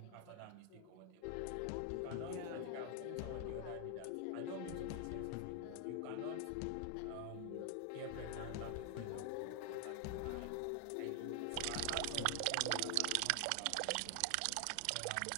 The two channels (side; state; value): both; different; correlation 0.00